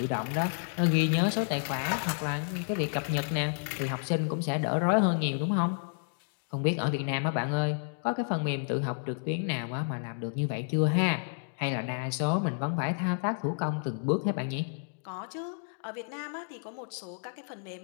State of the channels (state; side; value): silent; right; digital silence